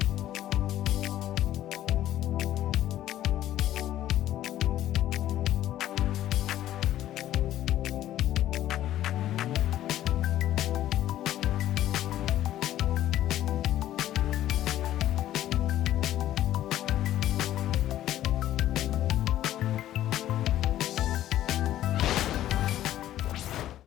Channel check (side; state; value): right; quieter; 13.0 dB